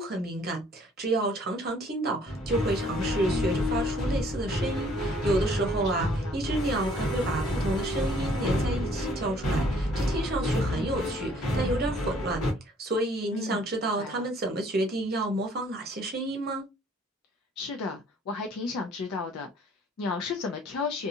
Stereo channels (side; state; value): both; normal; correlation 0.60